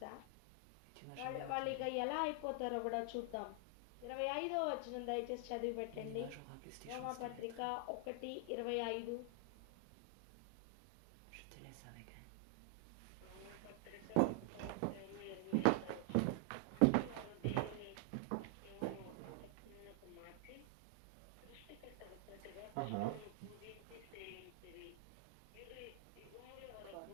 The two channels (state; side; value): different; both; correlation 0.00